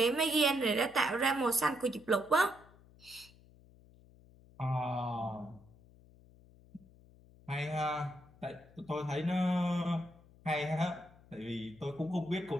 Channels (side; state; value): left; noise; hum, 25 dB below the sound